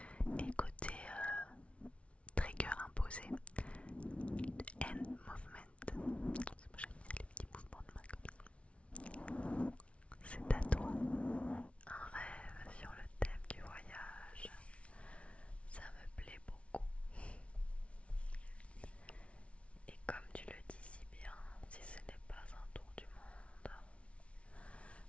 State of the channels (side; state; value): right; late; 0.062 ms